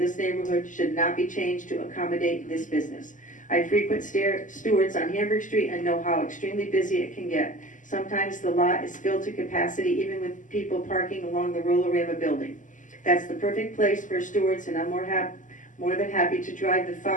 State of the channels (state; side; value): late; right; 0.37 ms